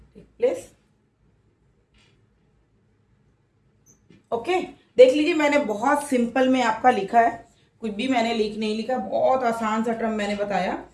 take place। Okay देख लीजिए, मैंने बहुत simple में आपका लिखा है, कुछ भी मैंने नहीं लिखा, बहुत आसान सा टर्म मैंने बताया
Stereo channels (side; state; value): both; identical; correlation 1.00